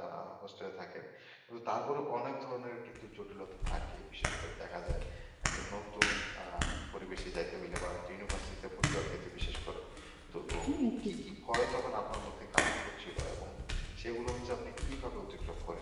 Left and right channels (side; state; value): both; identical; correlation 1.00